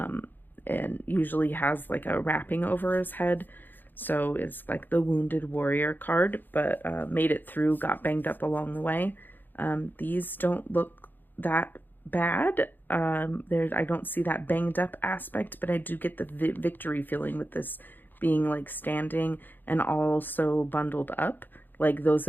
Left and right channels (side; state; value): right; late; 0.090 ms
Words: and usually has like a wrapping over his head. So it's like the wounded warrior card, but made it through, got banged up along the way. These don't look that bad. I don't see that banged up aspect, but I do get the victory feeling with this being like standing and also bundled up. Like those